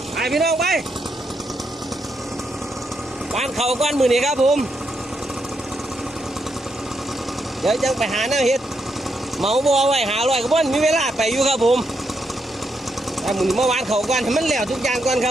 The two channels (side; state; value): both; normal; correlation 0.80